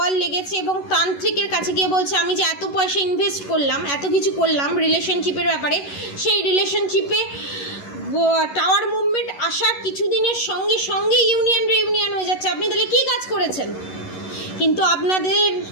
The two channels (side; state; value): right; late; 11 ms